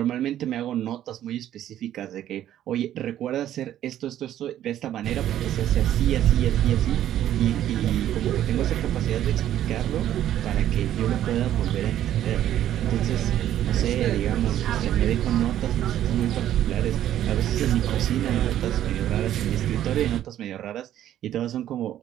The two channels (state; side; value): quieter; left; 11.8 dB